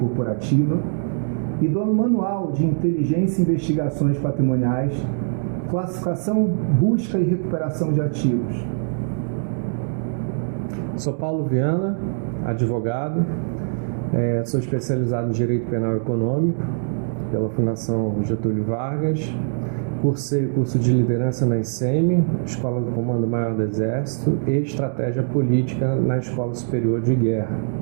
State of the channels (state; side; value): silent; left; digital silence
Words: e do Manual de Inteligência e Investigações Patrimoniais, Classificação, Busca e Recuperação de Ativos. Sou Paulo Viana, advogado, sou especializado em Direito Penal Econômico pela Fundação Getúlio Vargas, cursei o curso de Liderança na ICEME, Escola do Comando Maior do Exército, e Estratégia Política na Escola Superior de Guerra.